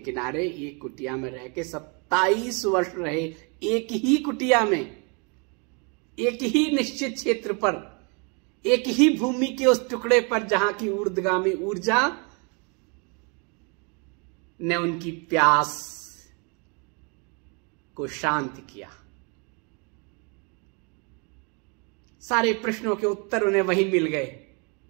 एक कुटिया में रह के 27 वर्ष रहे, एक ही कुटिया में, एक ही निश्चित क्षेत्र पर, एक ही भूमि के उस टुकड़े पर जहां की ऊर्ध्वगामी ऊर्जा ने उनकी प्यास को शांत किया। सारे प्रश्नों के उत्तर उन्हें वहीं मिल गए।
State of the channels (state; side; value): quieter; left; 34.0 dB